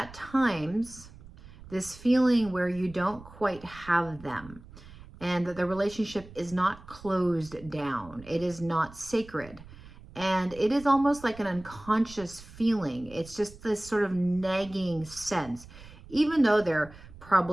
times this feeling where you don't quite have them and that the relationship is not closed down. It is not sacred. And it is almost like an unconscious feeling. It's just this sort of nagging sense. Even though they're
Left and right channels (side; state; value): right; noise; rumble, 19 dB below the sound